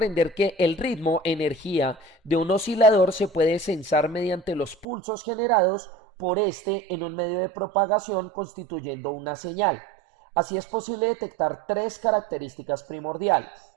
que el ritmo, energía de un oscilador se puede censar mediante los pulsos generados por este en un medio de propagación constituyendo una señal. Así es posible detectar tres características primordiales.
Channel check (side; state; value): left; drops out; at 4.9 s